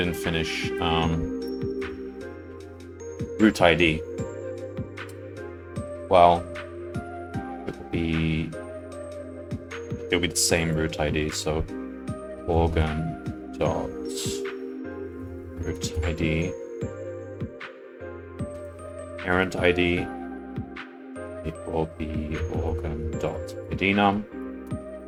finish root ID. Well, it'll be the same root ID, so organ dot root ID parent ID equal the organ dot idnum.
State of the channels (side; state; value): both; identical; correlation 1.00